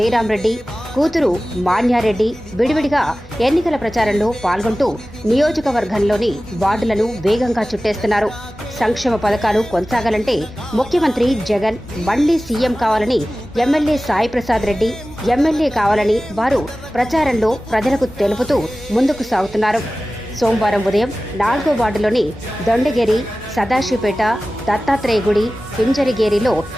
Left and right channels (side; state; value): both; normal; correlation 0.96